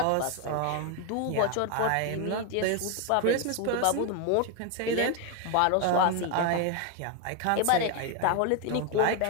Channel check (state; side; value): different; both; correlation 0.01